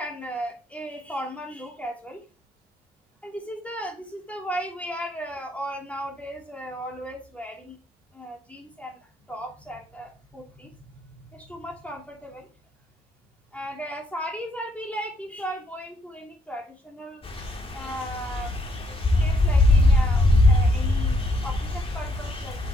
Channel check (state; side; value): normal; both; correlation 0.71